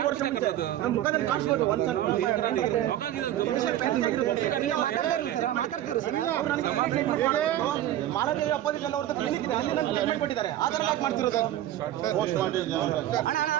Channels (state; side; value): quieter; left; 12.8 dB